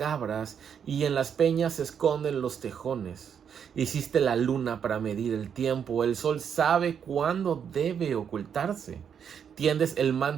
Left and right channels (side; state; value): left; quieter; 7.7 dB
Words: y en las peñas se esconden los tejones. Hiciste la luna para medir el tiempo, el sol sabe cuándo debe ocultarse. Tiendes el